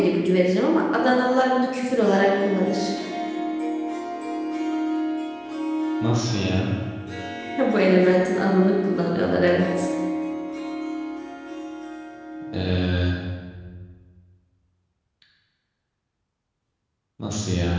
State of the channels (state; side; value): identical; both; correlation 1.00